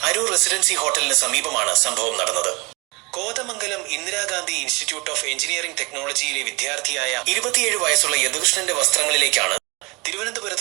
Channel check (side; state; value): left; quieter; 26.4 dB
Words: അരൂർ റെസിഡൻസി ഹോട്ടലിന് സമീപമാണ് സംഭവം നടന്നത്. Kothamangalam Indira Gandhi institute of engineering ടെക്നോളജിയിലെ വിദ്യാർത്ഥിയായ 27 വയസ്സുള്ള യദുകൃഷ്ണന്റെ വസ്ത്രങ്ങളിലേക്കാണ്